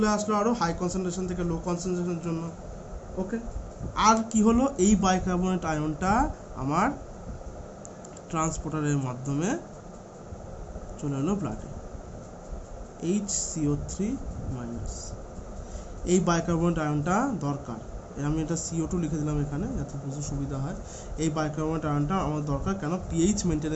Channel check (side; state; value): both; identical; correlation 1.00